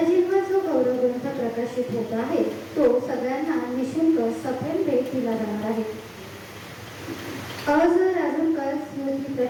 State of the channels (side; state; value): both; identical; correlation 1.00